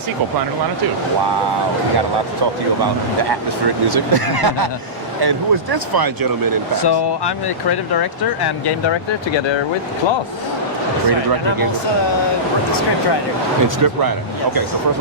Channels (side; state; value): both; normal; correlation -0.18